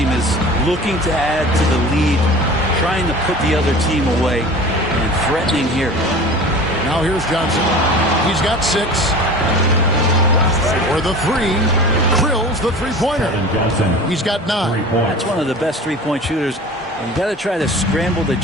is looking to add to the lead, trying to put the other team away, and threatening here. Now here's Johnson. He's got 6. For the 3, Krill's the three-pointer. He's got 9. That's one of the best three-point shooters. And you got to try to scramble the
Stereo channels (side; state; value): both; normal; correlation 0.38